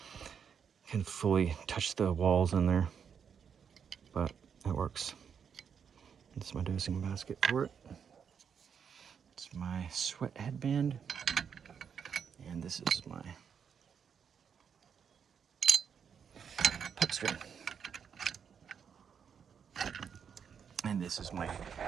fully touch the walls in there, but it works. This is my dosing basket for it. It's my sweat headband, and this is my puck string. And this is my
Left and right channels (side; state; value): left; quieter; 7.2 dB